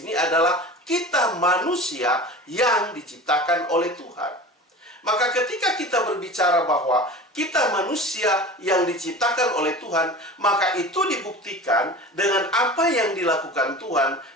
adalah kita manusia yang diciptakan oleh Tuhan. Maka ketika kita berbicara bahwa kita manusia yang diciptakan oleh Tuhan, maka itu dibuktikan dengan apa yang dilakukan Tuhan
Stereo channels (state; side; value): normal; both; correlation 0.35